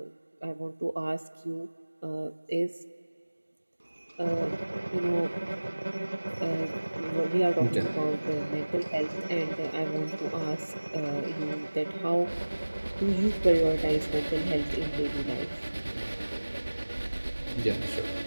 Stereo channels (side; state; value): both; inverted; correlation -1.00